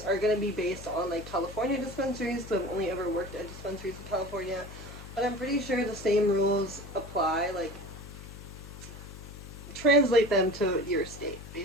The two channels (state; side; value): noise; left; hum, 14 dB below the sound